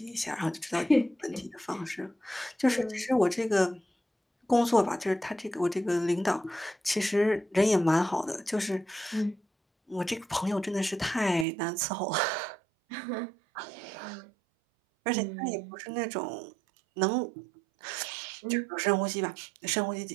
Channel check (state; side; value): drops out; left; at 11.5 s